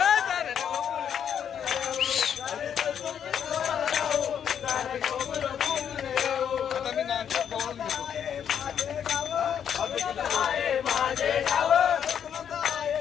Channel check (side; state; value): right; quieter; 8.5 dB